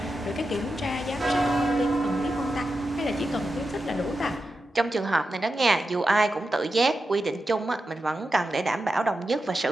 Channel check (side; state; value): both; normal; correlation 0.90